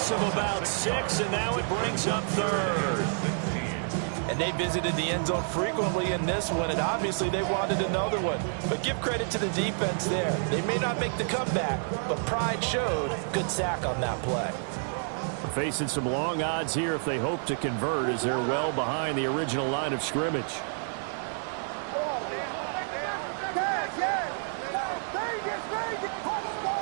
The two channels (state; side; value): silent; left; 59 dB below the other